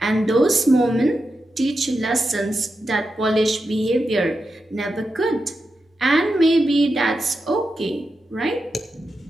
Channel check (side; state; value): both; normal; correlation 0.89